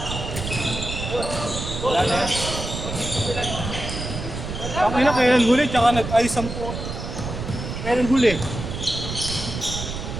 Wala na yan. Ang ina, kailan huli, tsaka nag-ayos ang po. Kailan huli?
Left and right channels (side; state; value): right; noise; rumble, 6 dB below the sound